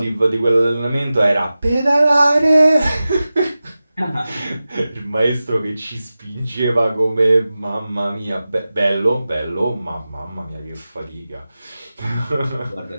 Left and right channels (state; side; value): inverted; both; correlation -0.95